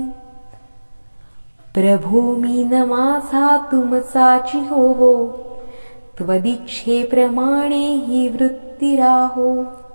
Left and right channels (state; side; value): inverted; both; correlation -1.00